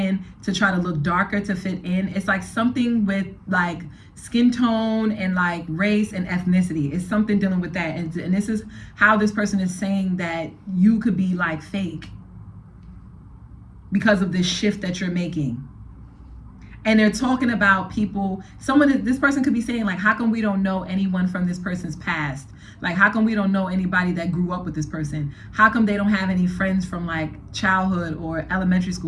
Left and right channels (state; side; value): identical; both; correlation 1.00